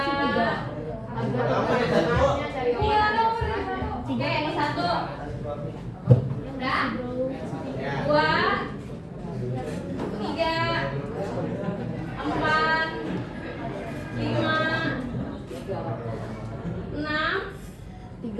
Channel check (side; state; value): both; identical; correlation 1.00